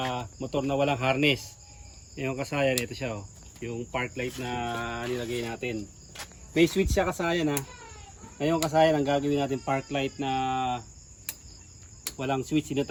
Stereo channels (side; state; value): both; identical; correlation 1.00